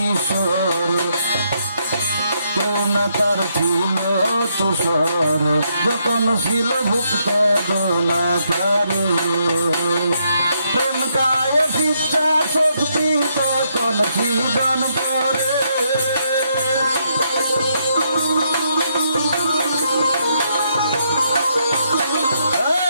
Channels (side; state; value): both; inverted; correlation -0.75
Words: কেউ না তার ছিল তুষর যখন ছিল ভুক্ত গোনাকার প্রেম কায়ে শিক্ষা শক্তি তখন সৃজন করে